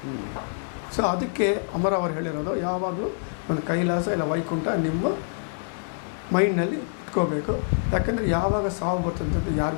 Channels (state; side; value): silent; right; digital silence